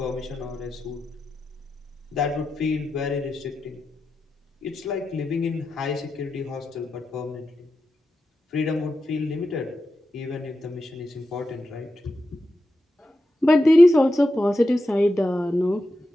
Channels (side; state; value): both; normal; correlation 0.89